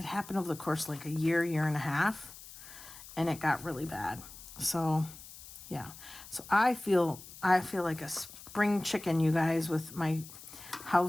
the course of like a year and a half, and it got really bad. So, yeah. So I feel like a spring chicken, you guys, with my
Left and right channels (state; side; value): noise; left; hiss, 16 dB below the sound